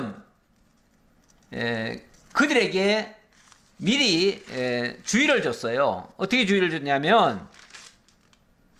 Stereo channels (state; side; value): identical; both; correlation 1.00